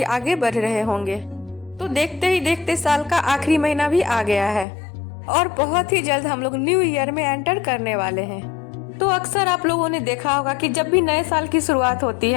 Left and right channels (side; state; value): right; drops out; at 4.7 s